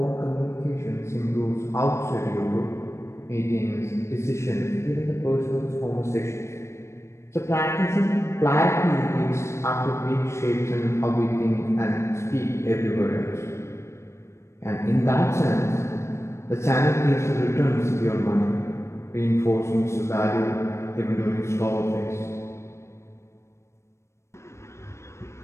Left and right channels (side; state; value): right; late; 0.13 ms